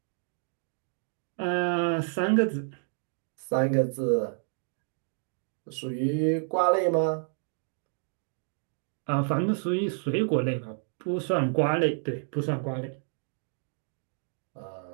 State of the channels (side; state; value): left; silent; digital silence